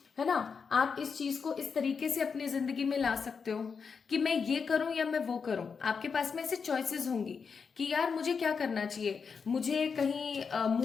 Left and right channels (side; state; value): right; quieter; 5.7 dB